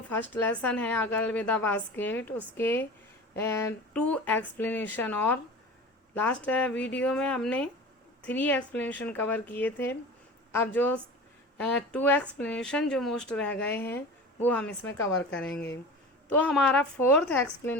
फर्स्ट लेसन है अगर विद द बास्केट, उसके 2 एक्सप्लेनेशन। और लास्ट वीडियो में हमने 3 एक्सप्लेनेशन कवर किए थे। अब जो 2 एक्सप्लेनेशन जो मोस्ट रह गए हैं वो हम इसमें कवर करेंगे। तो हमारा 4th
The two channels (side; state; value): both; normal; correlation 0.35